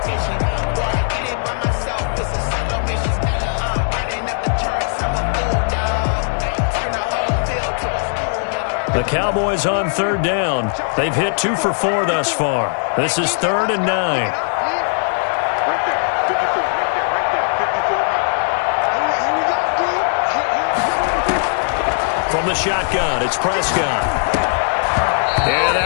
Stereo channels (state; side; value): silent; right; 67 dB below the other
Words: The Cowboys on 3rd down. They've hit 2 for 4 thus far. This is 3rd and 9. Right there, 54, right there, 54. Here we go, D. From the shotgun, it's Prescott. And